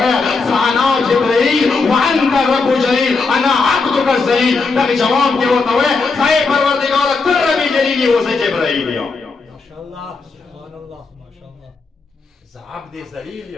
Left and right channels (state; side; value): quieter; right; 4.2 dB